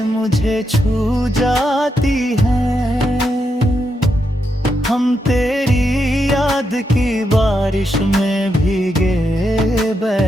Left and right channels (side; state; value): both; normal; correlation 0.83